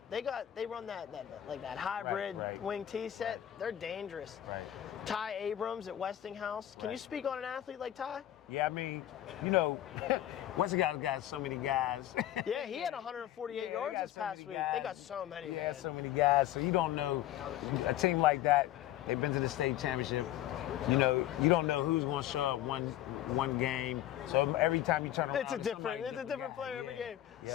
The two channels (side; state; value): right; quieter; 12.8 dB